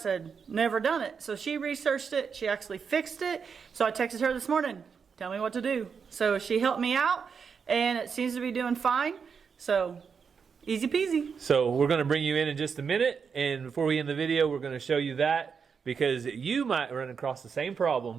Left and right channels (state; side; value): quieter; left; 6.1 dB